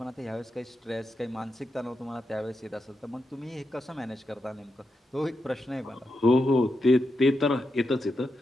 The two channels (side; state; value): both; normal; correlation 0.86